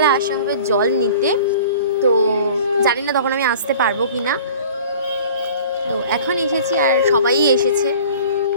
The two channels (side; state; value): both; inverted; correlation -0.44